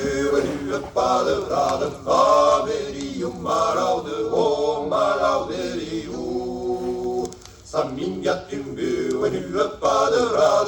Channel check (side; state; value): both; identical; correlation 1.00